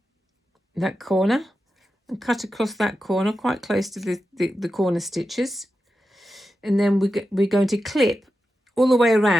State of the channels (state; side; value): normal; both; correlation 0.90